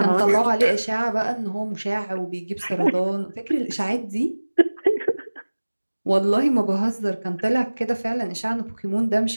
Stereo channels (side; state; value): both; inverted; correlation -1.00